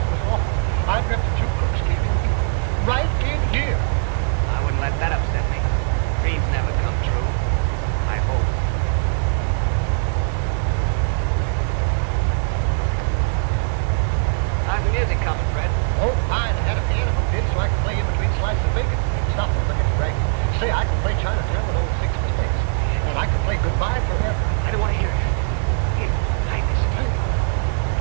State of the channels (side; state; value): left; silent; digital silence